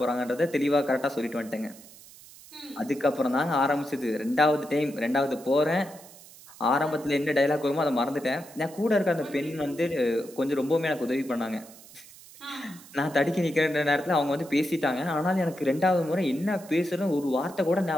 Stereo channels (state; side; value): noise; right; hiss, 20 dB below the sound